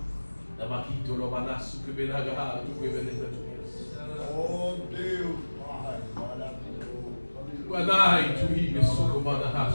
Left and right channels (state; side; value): inverted; both; correlation -1.00